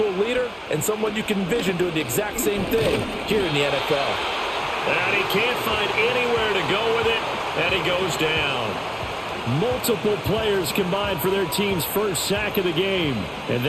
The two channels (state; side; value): identical; both; correlation 1.00